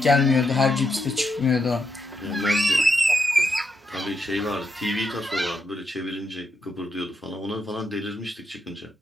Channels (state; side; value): normal; both; correlation 0.82